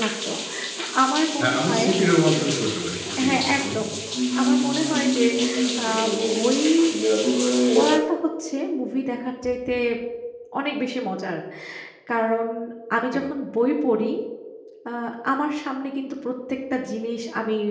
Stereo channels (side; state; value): both; identical; correlation 1.00